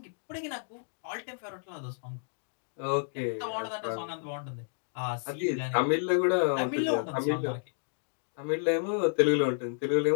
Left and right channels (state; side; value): silent; right; digital silence